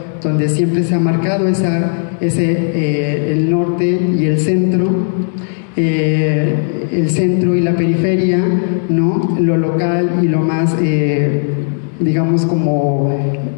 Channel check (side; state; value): right; silent; digital silence